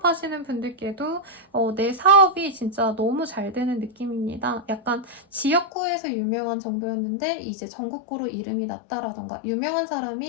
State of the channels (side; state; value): right; drops out; at 5.7 s